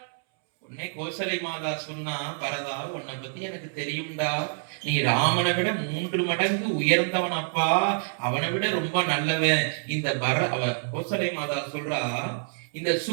உன்னை கோசலை மாதா சொன்னா, பரதா உன்னை பத்தி எனக்கு தெரியும்டா. நீ ராமனை விட 3 மடங்கு உயர்ந்தவன் அப்பா. அவனை விட ரொம்ப நல்லவன். இந்த கோசலை மாதா சொல்றா, இந்த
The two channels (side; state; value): left; silent; 60 dB below the other